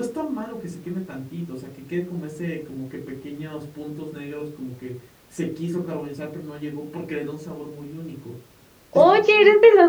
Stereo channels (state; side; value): identical; both; correlation 1.00